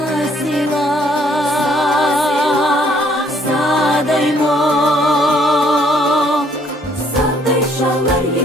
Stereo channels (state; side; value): normal; both; correlation 0.64